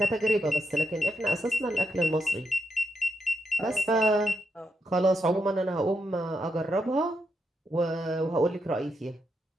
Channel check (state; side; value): normal; both; correlation 0.82